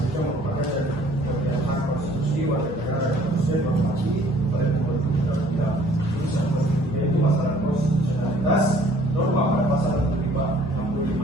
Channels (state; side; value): normal; both; correlation 0.57